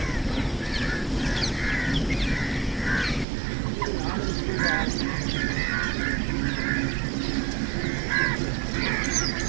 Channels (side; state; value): left; drops out; at 3.2 s